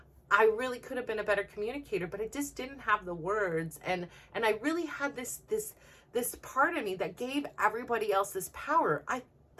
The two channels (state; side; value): identical; both; correlation 1.00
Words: I really could have been a better communicator, but I just didn't have the words, and I really had this part of me that gave everybody else this power. I